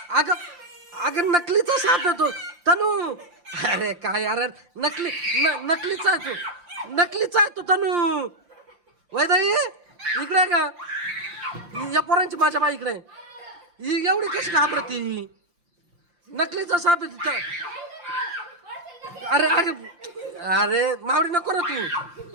अगं अगं नकलीचा साप आहे तो तनू. अरे काय यार नकलीचा आहे तो, नकलीचा आहे तो तनू. वैदाई इकडे आहे का? या पोरांची माझ्या बाई इकडे. ही एवढी कशी घाबरती? नकलीचा साप आहे तिथं. अरे अरे अरे मावडी नको ना तू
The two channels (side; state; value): left; late; 5.7 ms